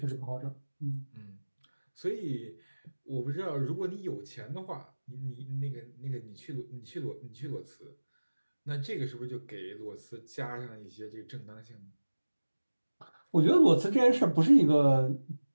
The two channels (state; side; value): inverted; both; correlation -1.00